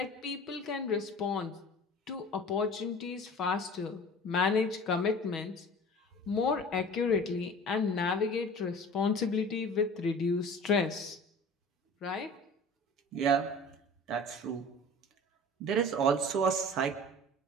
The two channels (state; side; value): normal; both; correlation 0.41